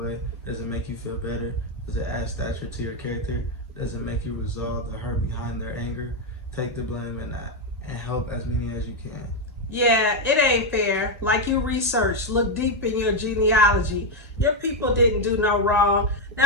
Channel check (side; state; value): both; normal; correlation 0.05